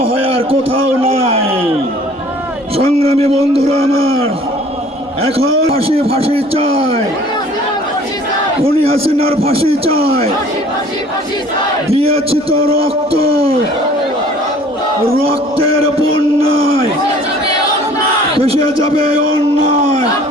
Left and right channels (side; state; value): both; normal; correlation 0.51